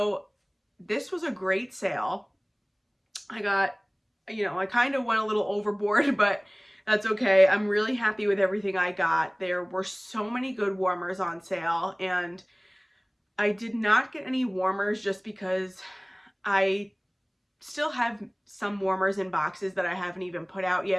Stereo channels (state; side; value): identical; both; correlation 1.00